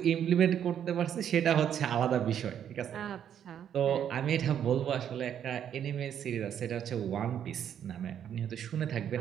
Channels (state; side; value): quieter; left; 9.4 dB